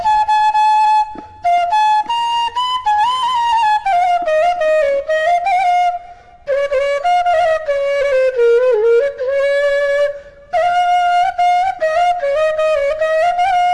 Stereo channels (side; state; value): both; identical; correlation 1.00